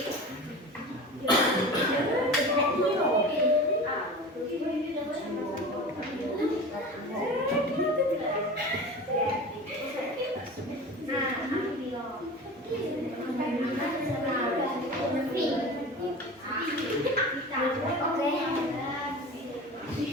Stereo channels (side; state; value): both; normal; correlation 0.34